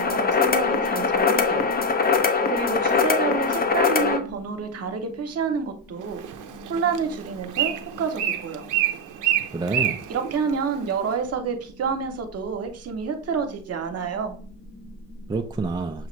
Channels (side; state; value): both; normal; correlation 0.05